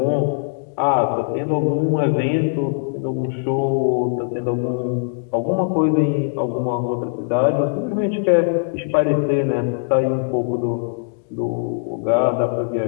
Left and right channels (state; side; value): silent; right; digital silence